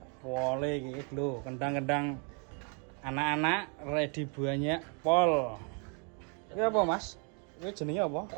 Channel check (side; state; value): left; quieter; 37.6 dB